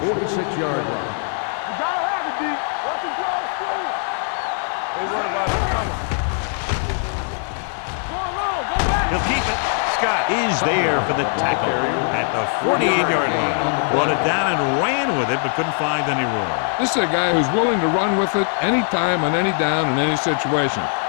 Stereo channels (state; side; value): silent; right; 58 dB below the other